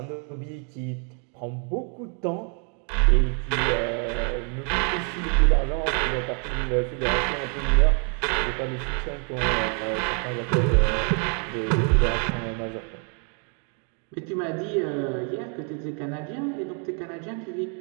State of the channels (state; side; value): quieter; left; 39.6 dB